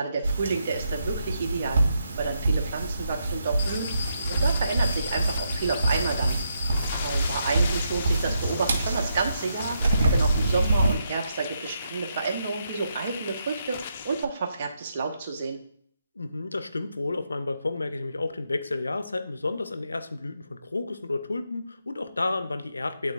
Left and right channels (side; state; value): both; inverted; correlation -0.80